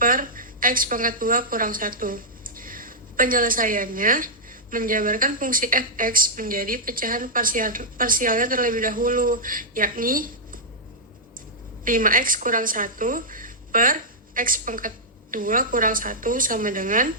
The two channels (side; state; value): both; normal; correlation -0.10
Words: x pangkat 2 kurang 1. Penyelesaiannya, menjabarkan fungsi fx menjadi pecahan parsialnya terlebih dahulu, yakni 5x kurang 1 per x pangkat 2 kurang 1 sama dengan